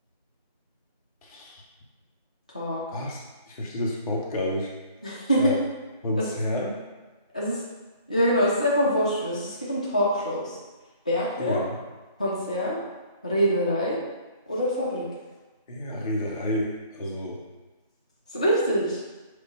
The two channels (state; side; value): inverted; both; correlation -0.54